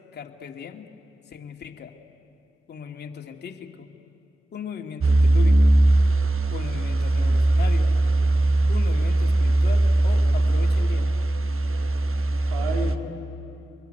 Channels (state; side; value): normal; both; correlation 0.96